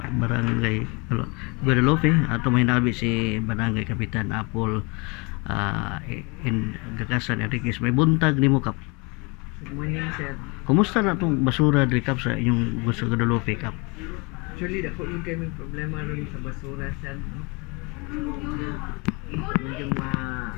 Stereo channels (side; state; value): right; quieter; 29.7 dB